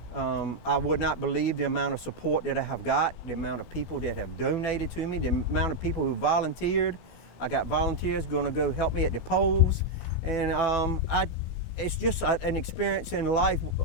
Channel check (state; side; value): late; right; 16 ms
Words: I would not believe the amount of support that I have got, the amount of people that have donated to me, the amount of people who volunteered. I got volunteers going to go help me at the polls. And it's just an experience in life,